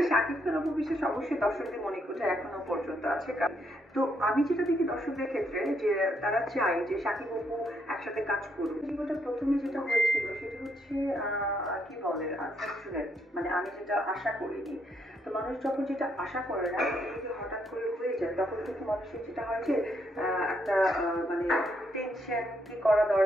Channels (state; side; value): normal; both; correlation 0.75